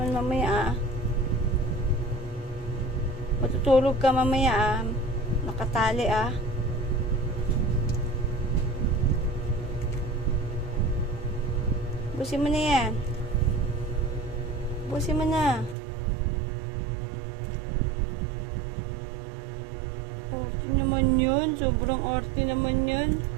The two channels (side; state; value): left; drops out; at 15.8 s